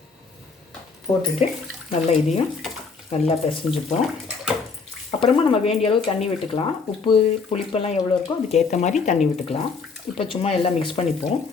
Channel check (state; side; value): quieter; right; 4.8 dB